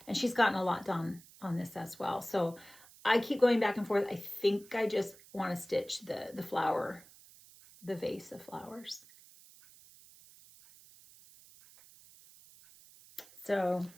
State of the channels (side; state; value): right; noise; hiss, 23 dB below the sound